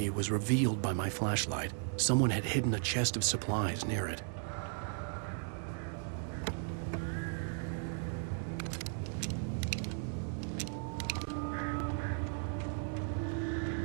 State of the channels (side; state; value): left; silent; 54 dB below the other